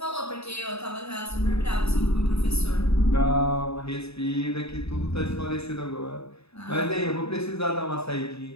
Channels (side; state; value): right; late; 0.79 ms